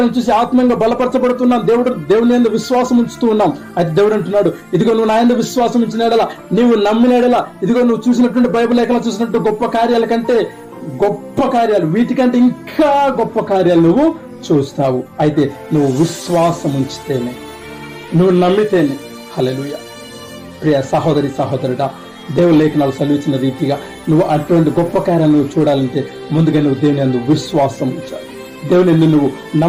చూసి ఆత్మీయంగా బలపరచబడుతున్నాం. దేవుని యందు విశ్వాసం ఉంచుతూ ఉన్నాం. అయితే దేవుడు అంటున్నాడు, ఇదిగో నువ్వు నా యందు విశ్వాసం ఉంచిన ఎడల, నీవు నమ్మిన ఎడల, ఇదిగో నువ్వు చూసినటువంటి బైబిల్ లేఖనాలు చూసినట్టు గొప్ప కార్యాల కంటే గొప్ప కార్యాలు, వీటికంటే ఇంకా గొప్ప కార్యాలు నువ్వు చూస్తావు. అయితే నువ్వు విశ్వాసం ఉంచితేనే, నువ్వు నమ్మితేనే. హల్లెలూయా. ప్రియ సహోదరి సహోదరుడా, దేవుని లేఖనాలు సెలవిచ్చిన రీతిగా నువ్వు అటువంటి గొప్ప కార్యాలను నువ్వు చూడాలంటే ముందుగా నువ్వు దేవుని యందు విశ్వాసం ఉంచాలి. దేవుని యందు నువ్వు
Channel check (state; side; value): identical; both; correlation 1.00